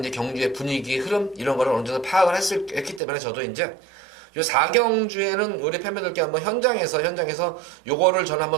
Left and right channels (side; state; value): left; drops out; at 3.0 s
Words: 경주의 분위기, 흐름, 이런 거를 어느 정도 파악을 했기 때문에 저도 이제 요 4경주에는 우리 팬분들께 한번 현장에서 요거를 저는